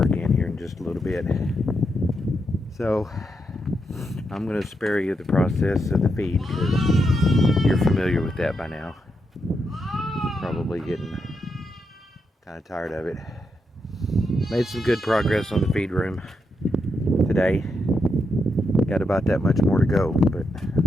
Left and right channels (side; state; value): both; normal; correlation 0.82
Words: here in just a little bit. So I'm going to spare you the process of the feed, because you're familiar with that by now. Probably getting kind of tired of it. Made some good progress on the feed room today. Got about that much more to go, but